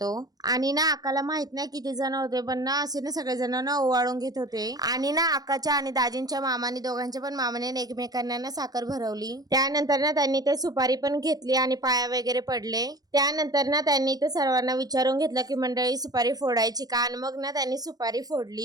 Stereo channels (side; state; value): left; late; 0.19 ms